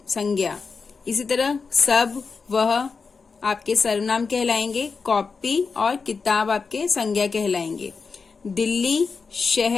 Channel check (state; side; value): quieter; right; 4.9 dB